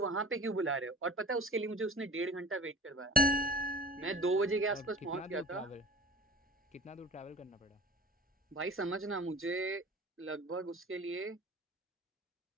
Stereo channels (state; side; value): normal; both; correlation 0.41